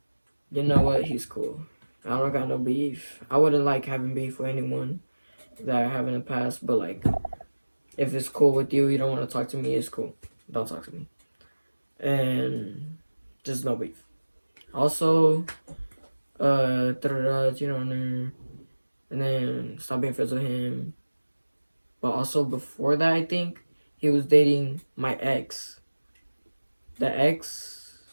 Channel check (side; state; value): both; inverted; correlation -1.00